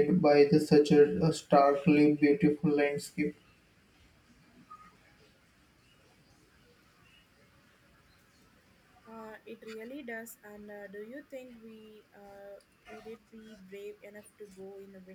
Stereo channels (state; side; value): identical; both; correlation 1.00